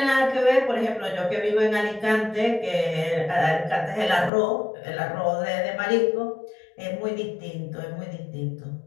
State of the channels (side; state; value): right; drops out; at 4.3 s